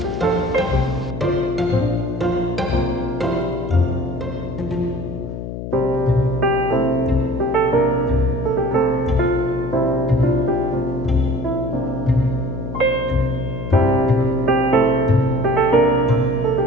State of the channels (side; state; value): left; noise; hum, 7 dB below the sound